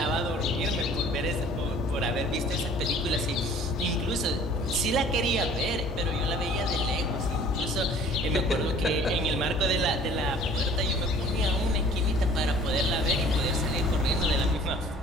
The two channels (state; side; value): normal; both; correlation 0.51